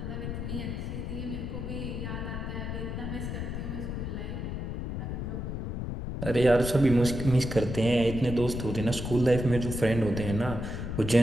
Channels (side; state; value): left; noise; rumble, 4 dB below the sound